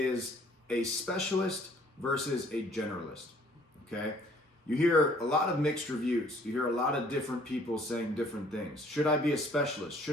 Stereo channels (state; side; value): normal; both; correlation 0.58